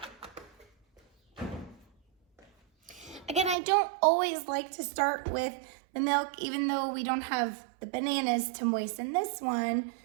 Again, I don't always like to start with the milk, even though we don't have the bananas to moisten this one.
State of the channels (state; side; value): drops out; left; at 3.6 s